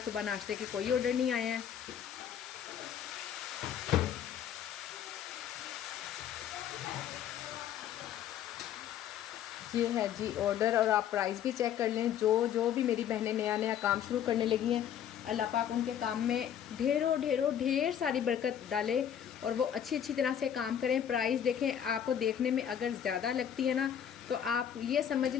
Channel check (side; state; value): right; quieter; 9.4 dB